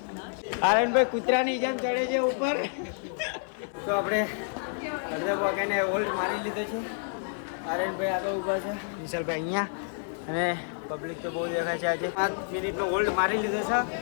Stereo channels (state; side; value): silent; right; digital silence